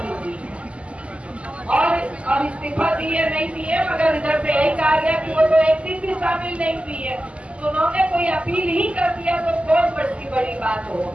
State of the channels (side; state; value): left; late; 0.059 ms